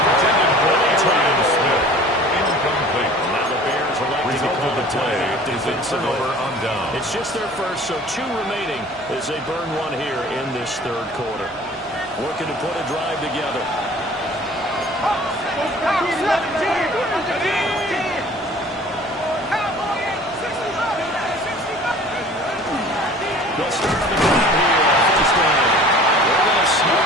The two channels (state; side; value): normal; both; correlation 0.47